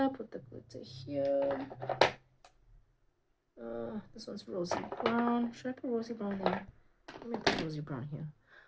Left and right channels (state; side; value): identical; both; correlation 1.00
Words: Put the glitter here. This one's rosy brown. Should I put rosy brown there? Let me put rosy brown here.